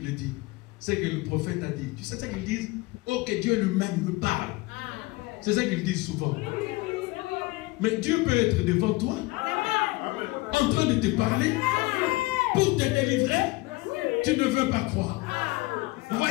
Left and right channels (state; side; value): quieter; right; 22.2 dB